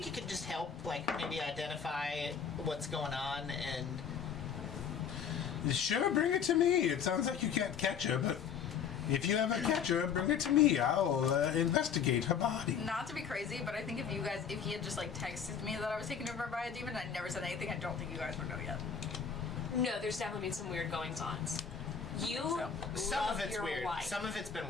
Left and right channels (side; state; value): right; quieter; 7.1 dB